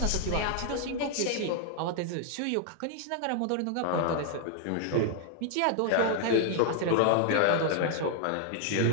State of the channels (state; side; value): different; both; correlation 0.00